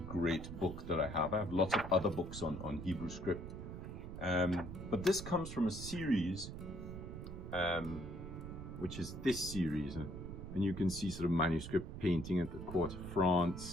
great book that I have. I have lots of other books on Hebrew script, but this comes from a series, which is this series, and you can see sort of manuscript painting at the court of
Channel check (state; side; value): noise; right; rumble, 8 dB below the sound